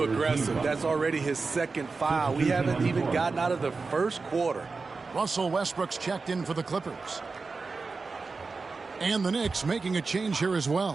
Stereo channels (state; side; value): quieter; left; 4.2 dB